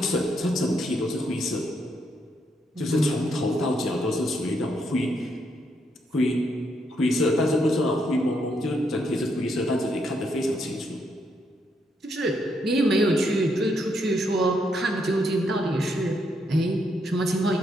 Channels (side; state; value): both; normal; correlation 0.76